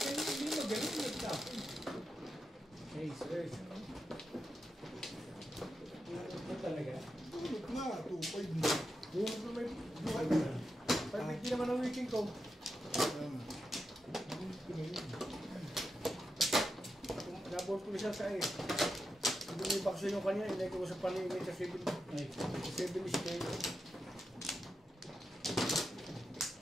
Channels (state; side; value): normal; both; correlation 0.87